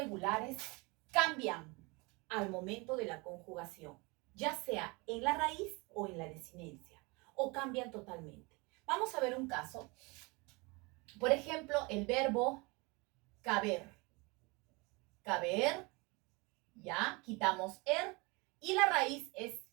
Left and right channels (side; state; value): left; quieter; 27.1 dB